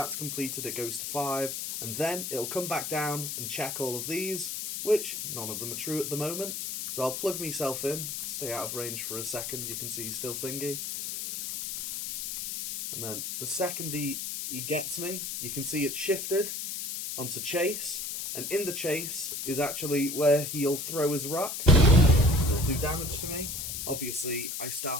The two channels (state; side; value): noise; left; hiss, 4 dB below the sound